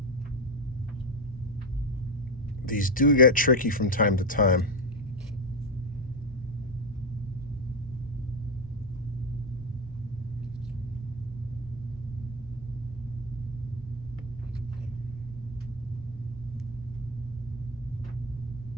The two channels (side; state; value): left; noise; rumble, 18 dB below the sound